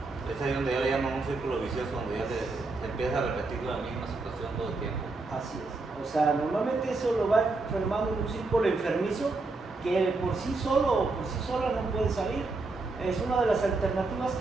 Es ahí donde ya le llaman un círculo vicioso, donde ya se empieza a repetir la misma situación todo el tiempo. Así es. O sea, normalmente eso lo va enfermando en un círculo enfermizo que por sí solo o por sí sola no puede salir. Es una de las alternativas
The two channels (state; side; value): quieter; left; 3.5 dB